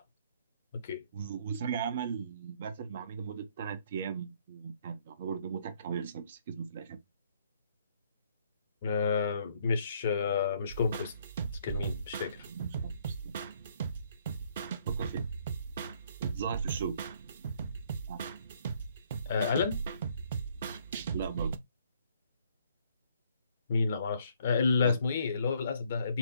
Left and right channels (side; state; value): both; inverted; correlation -0.66